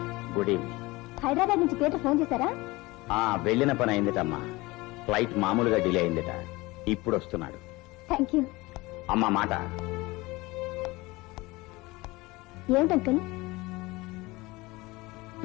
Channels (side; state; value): right; quieter; 21.9 dB